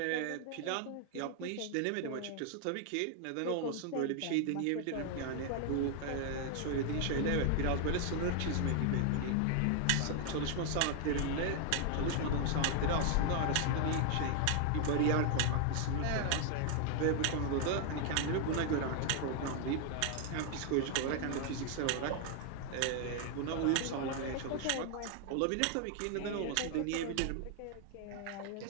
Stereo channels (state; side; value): different; both; correlation 0.00